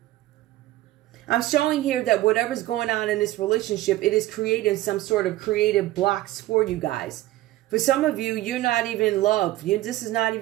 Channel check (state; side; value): quieter; left; 16.1 dB